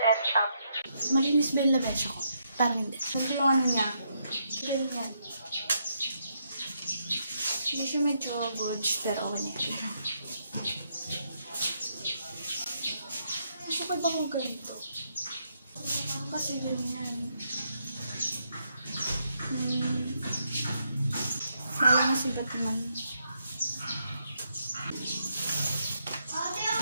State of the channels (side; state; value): both; inverted; correlation -0.78